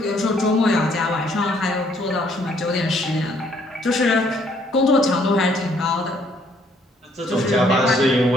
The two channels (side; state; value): both; normal; correlation 0.66